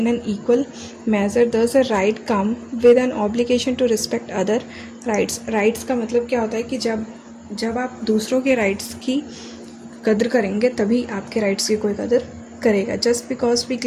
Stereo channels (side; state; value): both; identical; correlation 1.00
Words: an equal measure. Thus a right come with an obligation to respect other rights. Rights का मतलब क्या होता है कि जब आप दूसरों के राइट्स की कदर करेंगे तभी आपके राइट्स की कोई कदर करेगा। Just because we